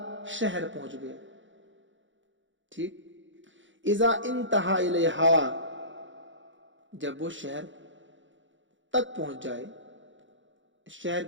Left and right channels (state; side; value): late; left; 0.55 ms